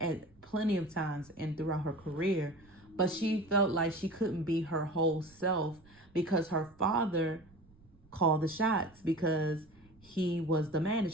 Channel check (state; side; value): noise; right; rumble, 28 dB below the sound